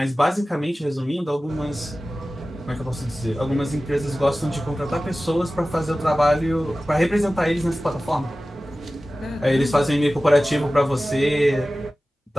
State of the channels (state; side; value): normal; both; correlation 0.96